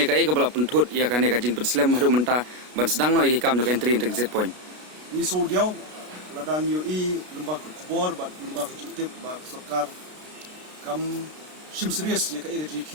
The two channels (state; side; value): late; left; 33 ms